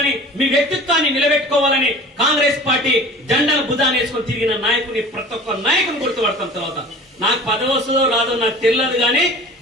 మీ వ్యక్తిత్వాన్ని నిలబెట్టుకోవాలని కాంగ్రెస్ పార్టీ జెండాను భుజాన్ని వేసుకొని తిరిగిన నాయకుని ప్రతి ఒక్క నాయకుని గుర్తుపడతాం. తర్వాత నాకు పదవి వస్తుందో రాదో నాకు తెలియదు కానీ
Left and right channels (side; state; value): both; normal; correlation 0.42